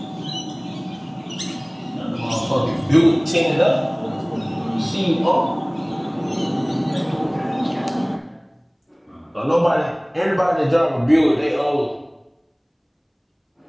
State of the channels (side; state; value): both; identical; correlation 1.00